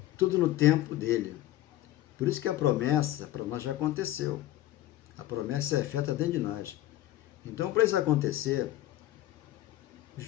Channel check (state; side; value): quieter; right; 14.7 dB